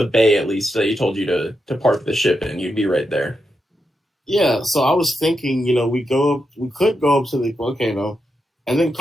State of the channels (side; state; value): both; normal; correlation 0.85